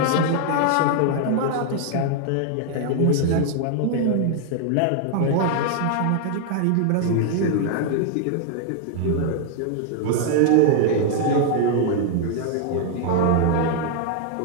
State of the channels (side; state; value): both; different; correlation 0.00